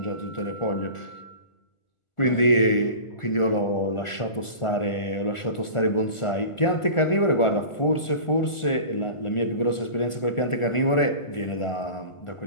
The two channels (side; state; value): right; late; 1.4 ms